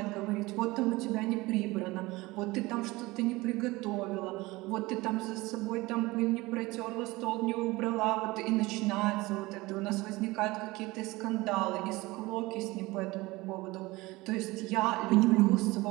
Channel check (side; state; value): left; quieter; 21.0 dB